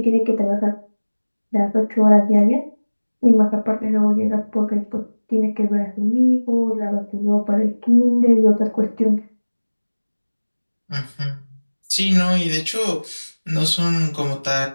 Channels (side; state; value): both; inverted; correlation -1.00